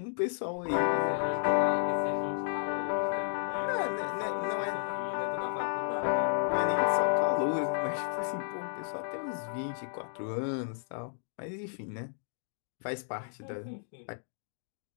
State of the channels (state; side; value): silent; right; digital silence